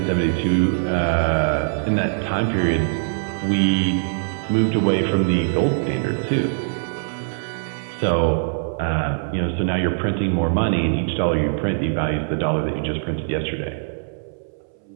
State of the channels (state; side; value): silent; left; 64 dB below the other